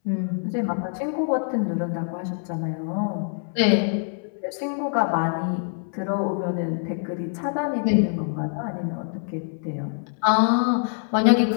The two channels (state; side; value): silent; right; 62 dB below the other